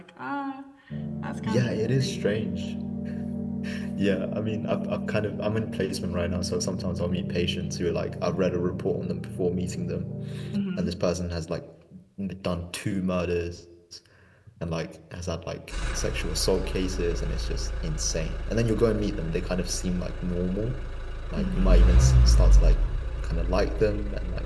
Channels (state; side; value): identical; both; correlation 1.00